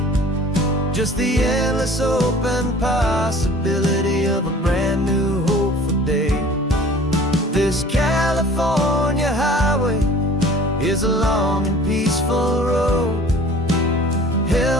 just the endless open possibility of a brand new hopeful day. This California highway is a long and peaceful road,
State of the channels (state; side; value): normal; both; correlation 0.47